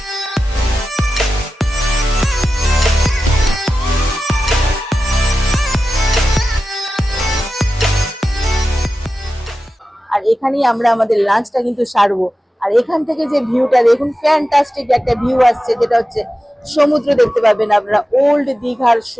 আর এখানেই আমরা আমাদের লাঞ্চটা কিন্তু সারবো। আর এখান থেকে যে ভিউটা দেখুন, ফ্যান্টাস্টিক একটা ভিউ আসছে, যেটা হচ্ছে সমুদ্র দেখতে পাবেন আপনারা, ওল্ড দীঘার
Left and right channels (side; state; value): both; normal; correlation 0.93